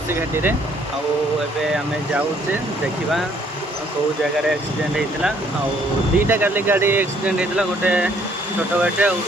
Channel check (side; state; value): both; normal; correlation 0.64